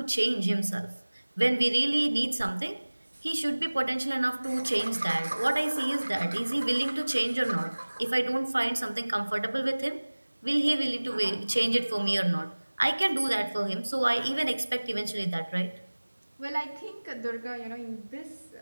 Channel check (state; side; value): inverted; both; correlation -1.00